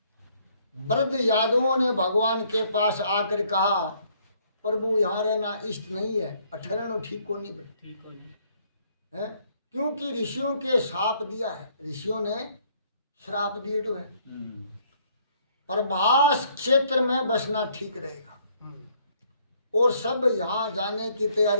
वृद्ध यादवों ने भगवान के पास आकर कहा, प्रभु यहाँ रहना इष्ट नहीं है, ठहरना ठीक को नहीं है, क्योंकि ऋषियों के श्राप दिया है, ऋषियों ने श्राप दिए तो है। प्रभास क्षेत्र में बसना ठीक रहेगा। और सब यहाँ जाने की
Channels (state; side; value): inverted; both; correlation -0.66